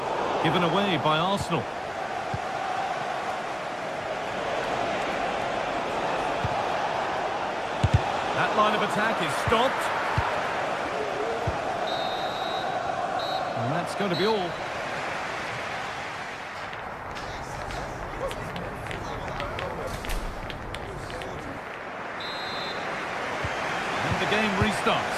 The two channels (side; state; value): both; identical; correlation 1.00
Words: Given away by Arsenal. That line of attack is stopped. And that's going to be all. And the game restarts.